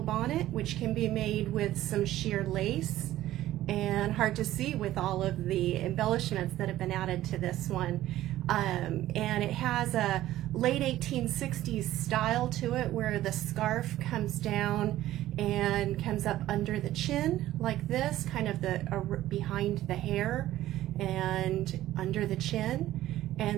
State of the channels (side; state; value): left; quieter; 14.4 dB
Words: which can be made with some sheer lace, and hard to see with all of the embellishments that have been added to this one. And it has a late 1860s style to it where the scarf comes down and comes up under the chin like this, kind of behind the hair and under the chin.